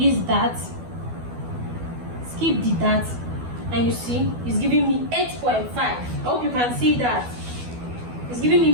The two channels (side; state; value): left; late; 12 ms